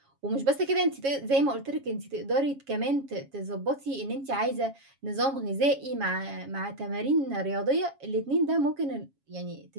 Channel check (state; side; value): late; left; 7.3 ms